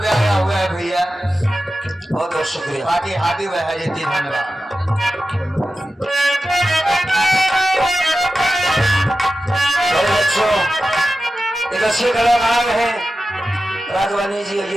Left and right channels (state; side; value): normal; both; correlation 0.92